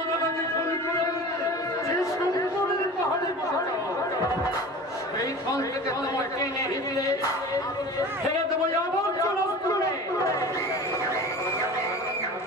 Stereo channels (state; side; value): normal; both; correlation 0.37